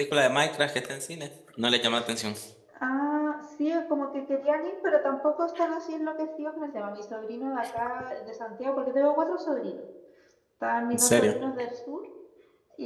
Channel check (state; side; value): identical; both; correlation 1.00